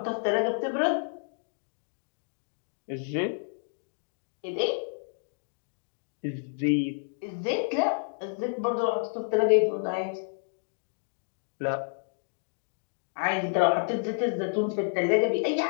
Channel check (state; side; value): silent; right; digital silence